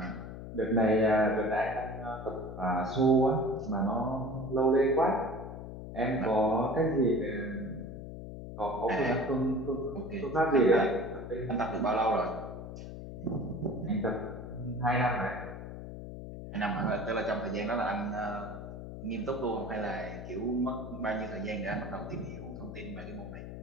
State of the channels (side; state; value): left; noise; hum, 10 dB below the sound